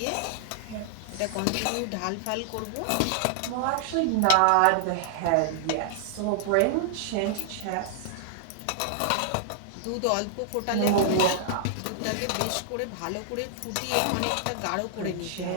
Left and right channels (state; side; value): different; both; correlation -0.01